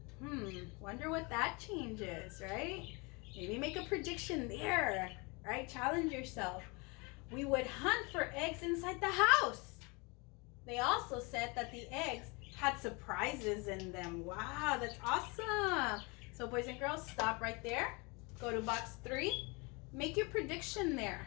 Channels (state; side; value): quieter; right; 28.9 dB